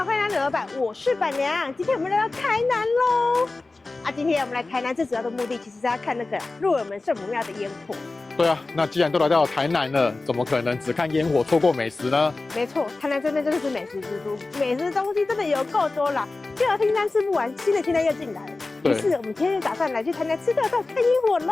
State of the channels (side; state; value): right; quieter; 3.4 dB